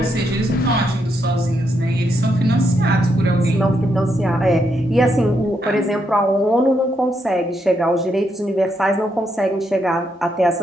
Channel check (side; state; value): both; normal; correlation 0.79